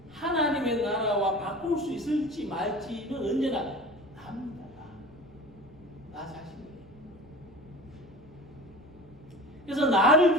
하나님의 나라와 바꿀 수 있을지 말지는 언제나 나입니다. 나 자신이에요. 그래서 나를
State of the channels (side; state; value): left; noise; rumble, 27 dB below the sound